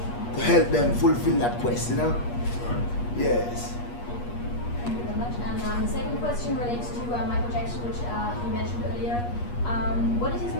to help them fulfill that quest, you know? Yes. Thank you very much. And Second question relates to Michael Jackson, which he mentioned earlier. What did his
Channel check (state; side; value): late; right; 8.4 ms